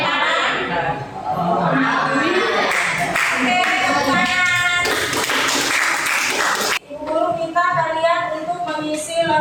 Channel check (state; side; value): identical; both; correlation 1.00